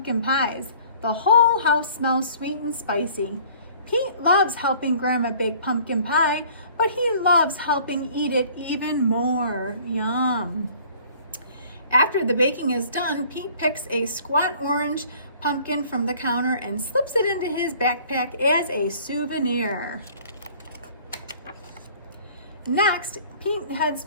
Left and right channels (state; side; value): inverted; both; correlation -0.53